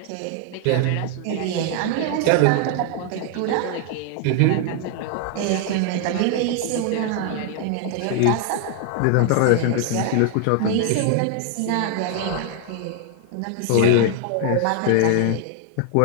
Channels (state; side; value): different; both; correlation 0.00